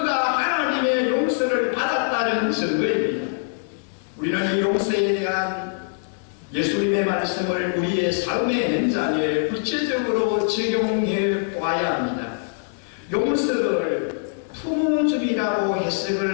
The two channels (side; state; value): right; silent; 62 dB below the other